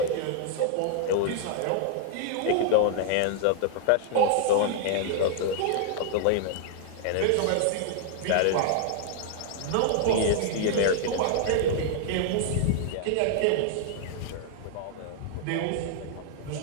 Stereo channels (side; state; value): both; different; correlation -0.01